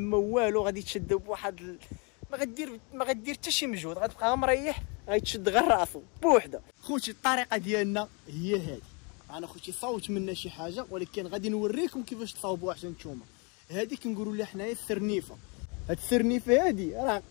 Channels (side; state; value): right; quieter; 33.0 dB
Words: والو. غادي تشد بواحد ما غدير حتى شي مجهود، غتبقى غير مريح، غيتشد غير راسو بوحده. خوتي الطريقه ديالنا هي هذه. انا خوتي صوت منا شي حاجه ولكن غادي نوريكم كيفاش تصاوبوها حتى نتوما. هذه كنقولوا لها حنايا السرنيفه. هاد السرنيفه هادي راه